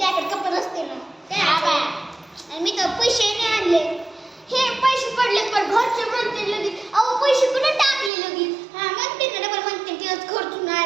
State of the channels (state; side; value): drops out; left; at 8.1 s